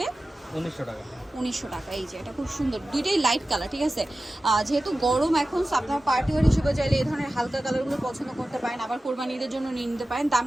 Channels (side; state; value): both; normal; correlation 0.95